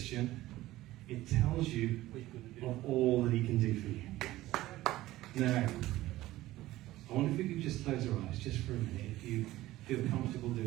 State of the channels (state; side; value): quieter; left; 16.4 dB